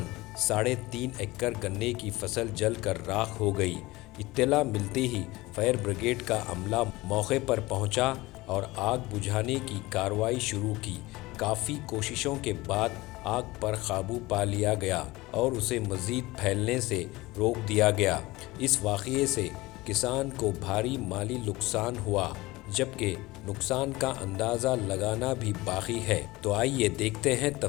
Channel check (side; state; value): right; quieter; 20.3 dB